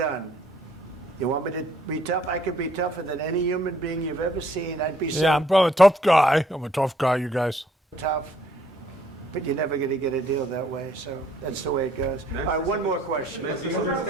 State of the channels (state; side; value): normal; both; correlation 0.64